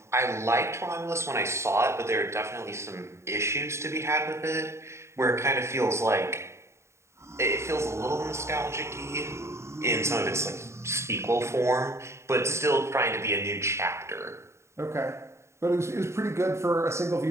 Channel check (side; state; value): left; late; 0.13 ms